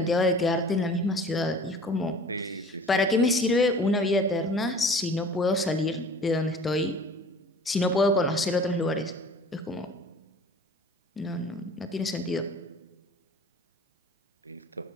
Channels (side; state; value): both; normal; correlation 0.46